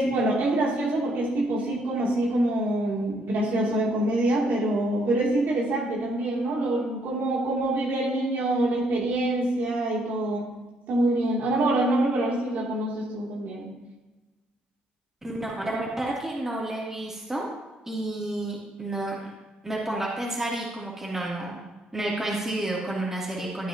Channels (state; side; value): normal; both; correlation 0.70